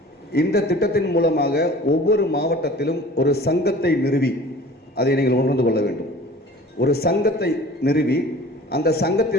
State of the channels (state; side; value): normal; both; correlation 0.44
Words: இந்த திட்டத்தின் மூலமாக ஒவ்வொரு மாவட்டத்திலும் ஒரு சங்கத்தை நிறுவி, அதை நீங்கள் உணர்ந்து கொள்ள வேண்டும், ஒரு சங்கத்தை நிறுவி அந்த